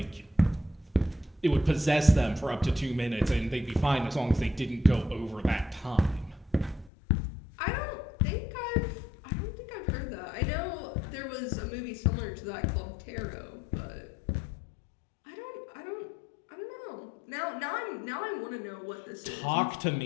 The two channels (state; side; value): drops out; right; at 6.9 s